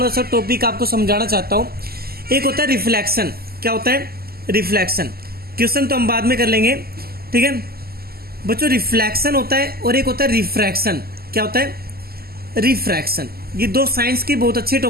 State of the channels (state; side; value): late; left; 0.45 ms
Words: सा टॉपिक आपको समझाना चाहता हूँ। एक होता है रिफ्लेक्शन, क्या होता है, रिफ्लेक्शन, क्वेश्चन तो हम बाद में कर लेंगे, ठीक है बच्चों। रिफ्लेक्शन होता है और एक होता है रिफ्रैक्शन, क्या होता है, रिफ्रैक्शन। ये दो साइंस के बहुत अच्छे